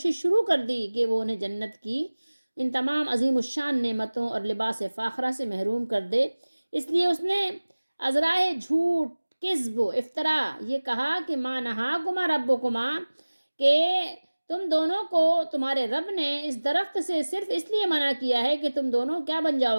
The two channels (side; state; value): both; inverted; correlation -1.00